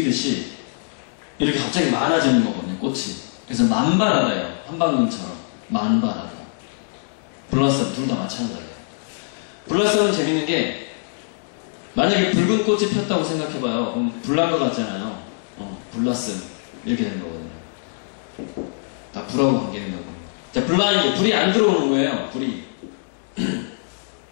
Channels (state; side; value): silent; right; digital silence